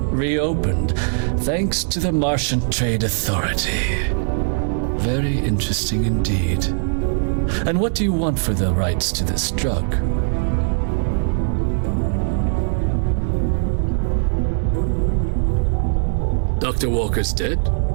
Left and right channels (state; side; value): silent; left; digital silence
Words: reopened thanks to the Martian Trade Authority. Very interesting indeed. And what do you want for the rights to this drug? Dr. Walker's dead?